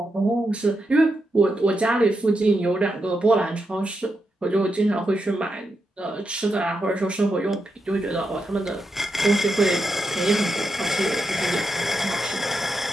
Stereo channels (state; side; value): normal; both; correlation 0.85